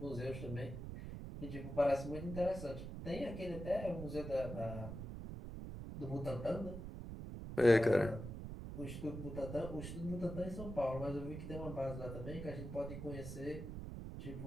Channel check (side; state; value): right; noise; rumble, 7 dB below the sound